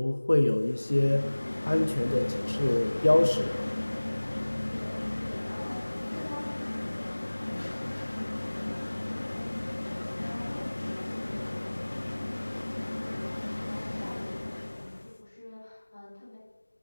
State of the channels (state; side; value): inverted; both; correlation -1.00